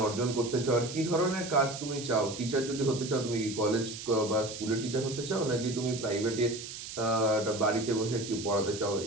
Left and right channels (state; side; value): noise; right; hiss, 10 dB below the sound